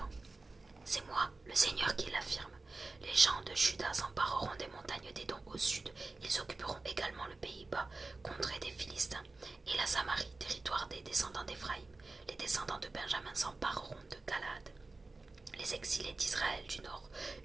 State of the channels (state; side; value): quieter; left; 3.5 dB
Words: C'est moi, le Seigneur, qui l'affirme. Les gens de Juda s'empareront des montagnes d'Édom au sud. Ils occuperont également le pays bas, contrée des Philistins, et la Samarie, territoire des descendants d'Éphraïm. Les descendants de Benjamin s'empareront de Galaad. Les exilés d'Israël du nord,